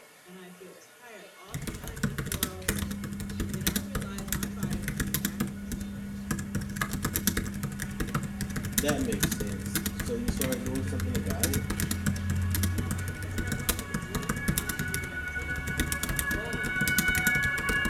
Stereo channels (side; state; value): both; identical; correlation 1.00